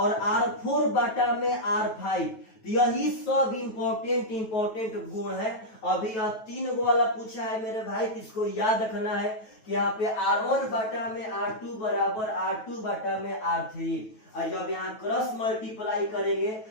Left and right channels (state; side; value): late; right; 9.2 ms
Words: R4 बाटा में R5। यही सब इंपॉर्टेंट गुण है। अभी यह 3 गो वाला पूछा है मेरे भाई, इसको याद रखना है कि यहाँ पे R1 बाटा में R2 बराबर R2 बाटा में R3, और जब यहाँ क्रॉस मल्टीप्लाई करेंगे